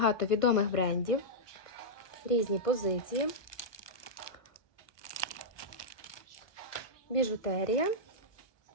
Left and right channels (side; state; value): right; late; 1.3 ms